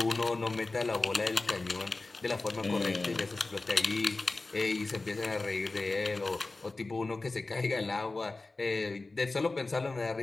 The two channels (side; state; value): right; quieter; 3.4 dB